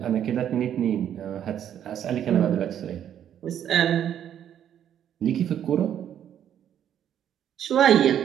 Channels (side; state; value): left; quieter; 9.9 dB